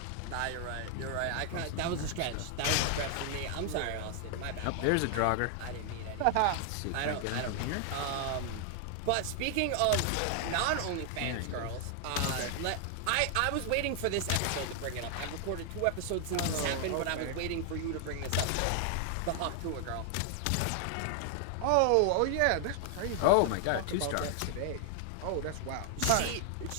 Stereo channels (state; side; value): different; both; correlation 0.00